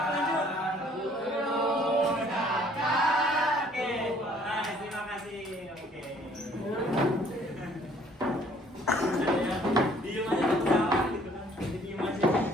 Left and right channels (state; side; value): normal; both; correlation 0.59